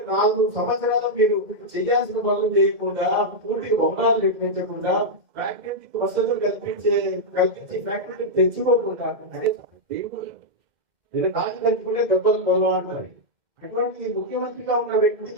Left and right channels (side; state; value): left; late; 2.0 ms